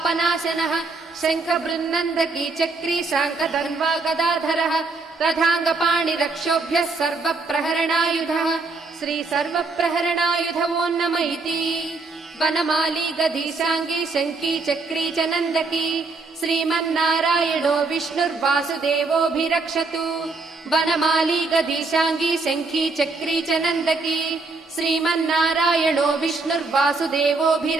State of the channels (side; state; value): left; quieter; 3.8 dB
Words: शङ्खबृन्नन्दकी चक्री शाङ्कधन्वा गदाधरः रथाङ्गपाणिरक्षोभ्यः सर्वप्रहरणायुधः श्री सर्वप्रहरणायुधवो नम इति वनमाली गदीशाङ्गी शङ्की चक्री च नन्दकी श्रीमन्नारायणो विष्णुर्वासुदेवोऽभिरक्षतु वनमाली गदीशाङ्गी शङ्खी चक्री च नन्दकी श्रीमन्नारायणो